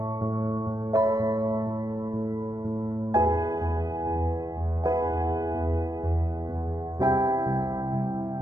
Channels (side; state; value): left; late; 0.18 ms